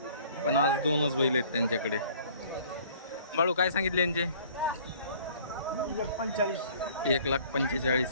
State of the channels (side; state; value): both; inverted; correlation -0.53